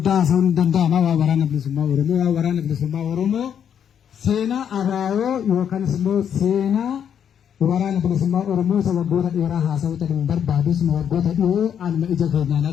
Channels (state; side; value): quieter; right; 8.6 dB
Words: haasa'uun danda'ama waa waraana bilisummaa Oromoo. Waa waraana bilisummaa Oromoo seenaa abaaboo yookaanis immoo seenaa waraana bilisummaa Oromoo isa waggoota dheeraa haasa'uu ta'uu barbaadus waggoota dhiyoo anuma ija keenyaan